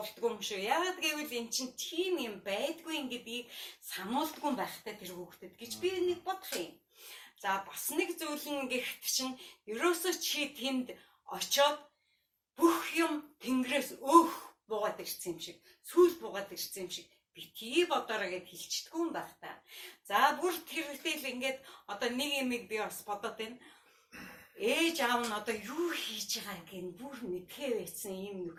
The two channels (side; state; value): both; identical; correlation 1.00